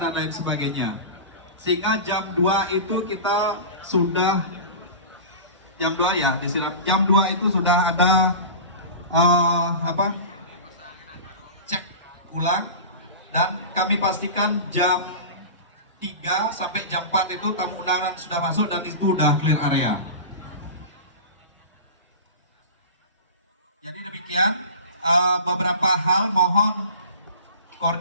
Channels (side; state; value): both; inverted; correlation -0.32